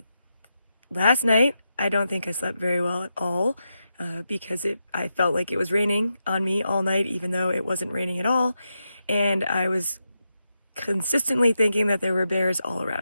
Last night, I don't think I slept very well at all because I felt like it was raining on me all night, even though it wasn't raining at all. And I was consistently thinking that there were bears all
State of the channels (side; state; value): both; inverted; correlation -0.86